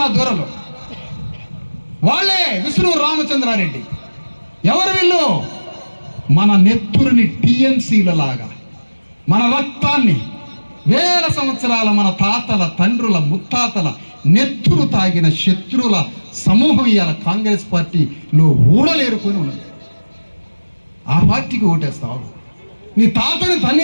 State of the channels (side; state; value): both; inverted; correlation -1.00